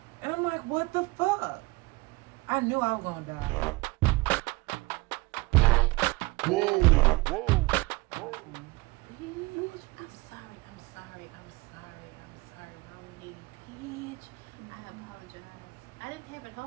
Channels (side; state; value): left; quieter; 23.6 dB